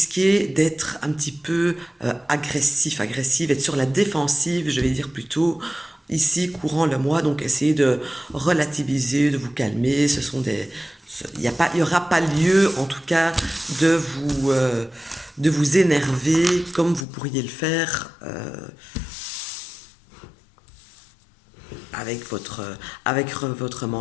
d'être un petit peu agressive, être sur la défensive, je vais dire plutôt, ici courant le mois. Donc essayez de relativiser, de vous calmer. Il y aura pas lieu, en tout cas, de vous énerver comme vous pourriez le faire avec votre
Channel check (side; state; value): right; drops out; at 17.1 s